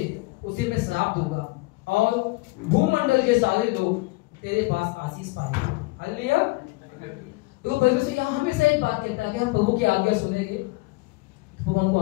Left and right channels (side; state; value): right; quieter; 22.8 dB